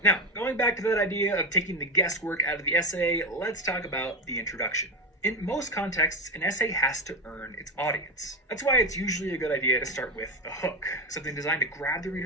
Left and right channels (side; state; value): both; normal; correlation 0.15